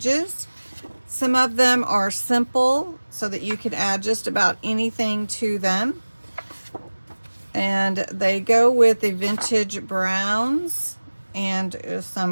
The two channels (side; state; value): both; inverted; correlation -1.00